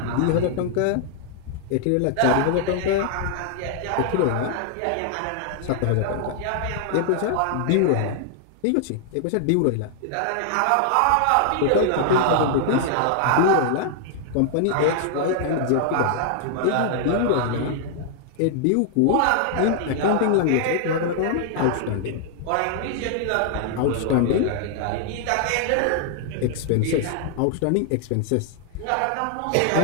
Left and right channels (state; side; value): different; both; correlation 0.00